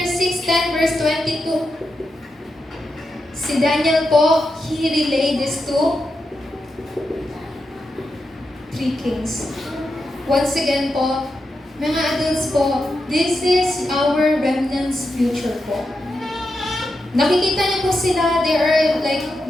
verse 22, si Daniel po, he relayed this to 3 kings. Once again po, mga adults po, this is our remnant's future po. Nakikita niyo po sila, they are like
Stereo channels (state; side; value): normal; both; correlation 0.87